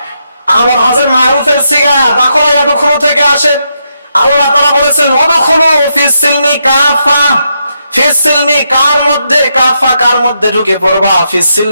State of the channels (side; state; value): both; inverted; correlation -0.81